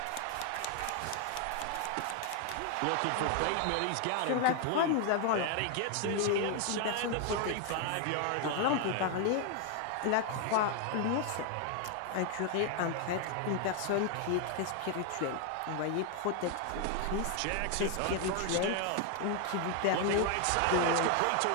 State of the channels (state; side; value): different; both; correlation 0.00